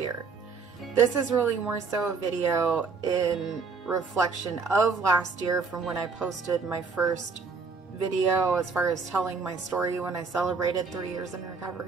This is really more so a video in reflection of last year from when I posted my first video as far as telling my story when I celebrated 3 years in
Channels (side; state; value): left; quieter; 4.8 dB